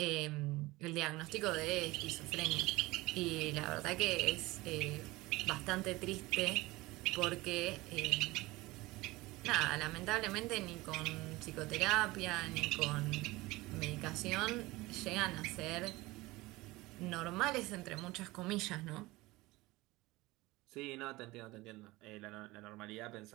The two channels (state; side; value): quieter; left; 20.5 dB